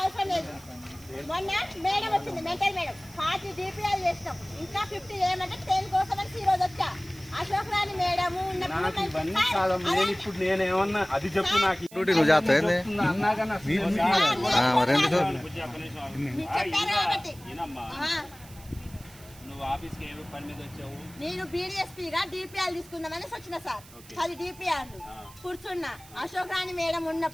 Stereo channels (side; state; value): right; noise; hiss, 21 dB below the sound